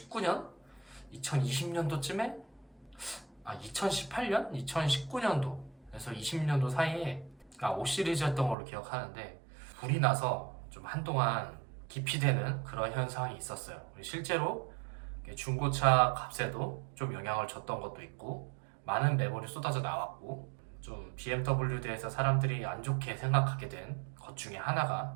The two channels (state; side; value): drops out; left; at 8.6 s